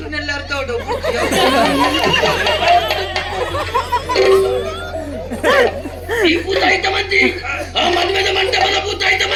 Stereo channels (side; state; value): both; identical; correlation 1.00